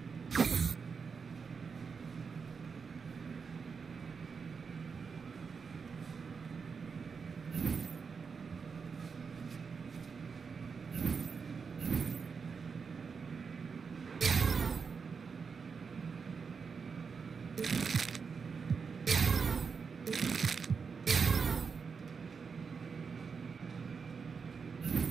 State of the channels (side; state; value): left; quieter; 5.5 dB